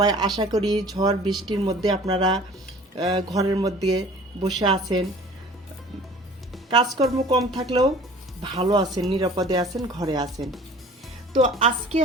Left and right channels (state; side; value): normal; both; correlation 0.47